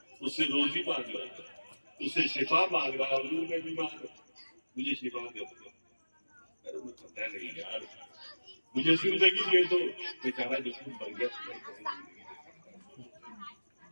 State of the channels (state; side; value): inverted; both; correlation -1.00